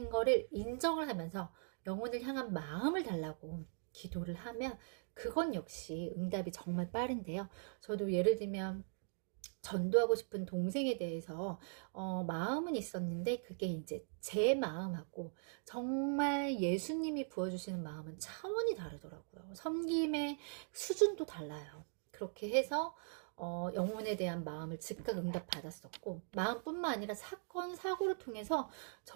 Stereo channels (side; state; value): left; silent; digital silence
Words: 거를 인정을 하면서 영혼을 향한 마음을 달라고 기도를 하면 그건 역시 응답이 정말 빠른데요. 저도 예를 들면 전도하고 싶은 동생에 대해서 마음은 있었는데 그게 이제 제 마음하고 정말 예수님이 부어주시는 마음은 차원이 다르더라고요. 섬김의 수준도 달라요. 그렇게 해서 영혼에 대한 마음을 즉각 응답 받았었고, 마음뿐만 아니라 사건, 사고를 통해서